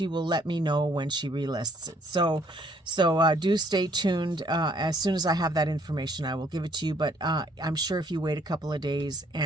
will let me know when she relists it. So do stay tuned. As soon as I have that information, I will give it to you. But I'm sure if you wait a couple of days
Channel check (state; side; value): normal; both; correlation 0.64